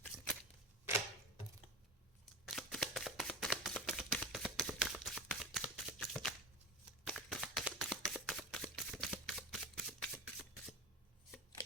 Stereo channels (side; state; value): both; normal; correlation 0.28